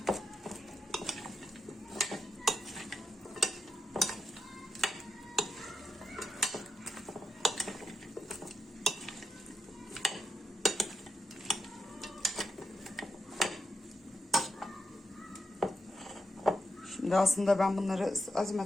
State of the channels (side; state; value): both; normal; correlation 0.84